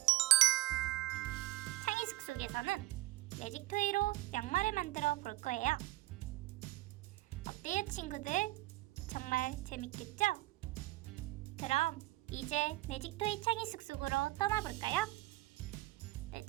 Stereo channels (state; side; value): quieter; left; 18.2 dB